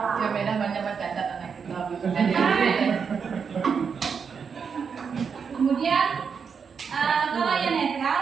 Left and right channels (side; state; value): left; quieter; 6.2 dB